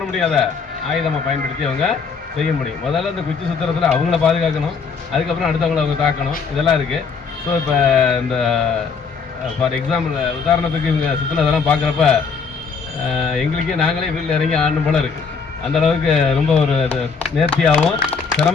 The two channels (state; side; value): quieter; right; 5.4 dB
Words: முடியாத ஆயுதமாக பயன்படுத்தி அவங்க செய்ய முடியும். முதல்ல இந்த குச்சி சுத்திரத்தில் அவங்கள பாதுகாக்கணும், அதுக்கப்புறம் அடுத்தவங்களை அவங்க தாக்கணும், இதெல்லாம் இருக்குது. ஸோ இப்போ இந்த ஃபார் எக்ஸாம்பிள் உதாரணத்துக்கு இவங்க சுற்றினதெல்லாம் பார்க்குறப்ப எங்களுக்கே நாங்களே வீட்டில் இறங்கி ஆடணும் போல இருக்குது. அந்தளவுக்கு ரொம்ப ஒரு நேர்த்தியாகவும்